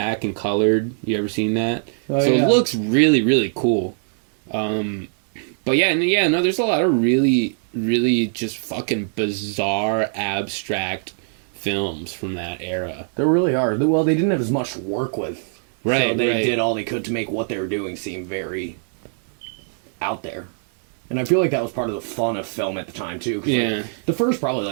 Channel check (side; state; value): left; silent; 62 dB below the other